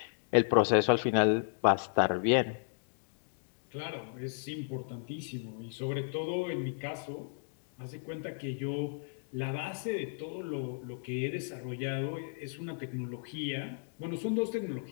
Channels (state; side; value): silent; right; digital silence